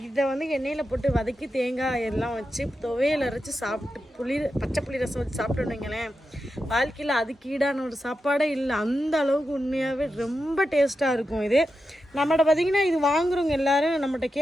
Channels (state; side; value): normal; both; correlation 0.89